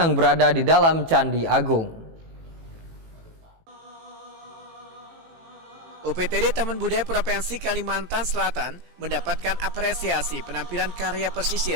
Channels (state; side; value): late; left; 18 ms